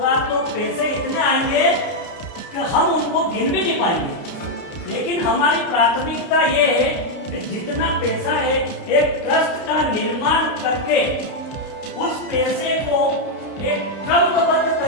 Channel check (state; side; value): late; right; 30 ms